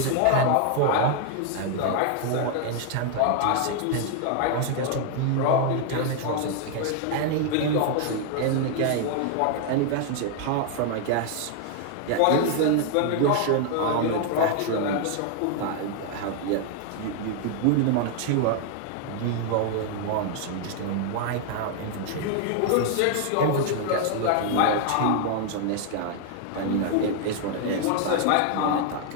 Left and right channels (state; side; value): different; both; correlation 0.00